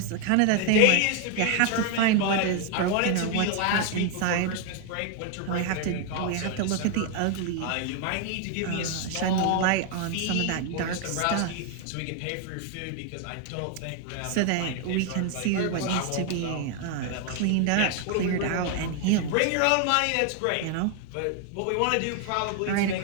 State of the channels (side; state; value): both; different; correlation 0.01